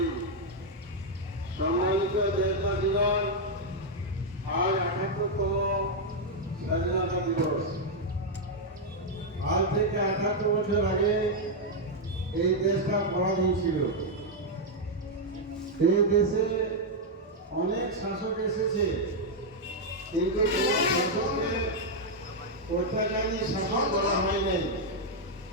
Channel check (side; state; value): both; normal; correlation -0.01